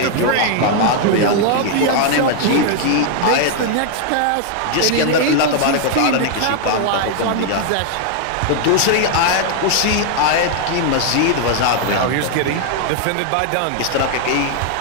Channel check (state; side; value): different; both; correlation 0.00